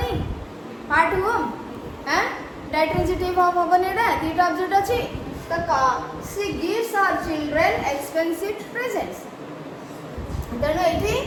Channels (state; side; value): identical; both; correlation 1.00